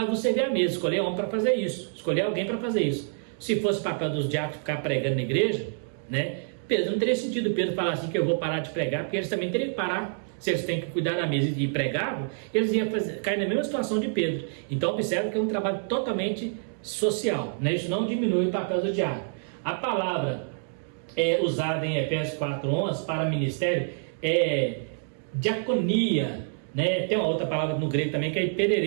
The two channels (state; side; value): silent; left; digital silence